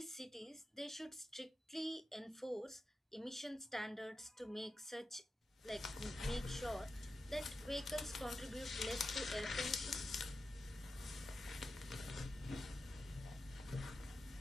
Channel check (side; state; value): both; normal; correlation 0.91